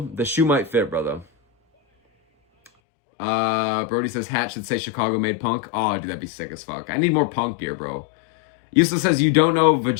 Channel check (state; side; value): drops out; right; at 2.7 s